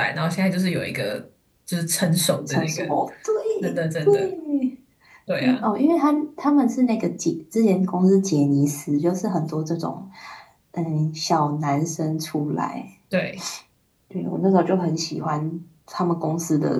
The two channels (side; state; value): both; identical; correlation 1.00